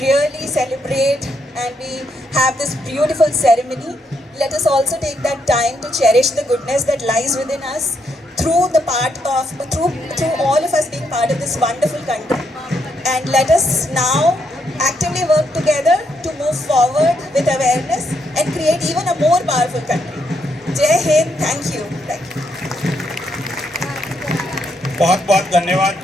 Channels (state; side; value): normal; both; correlation 0.77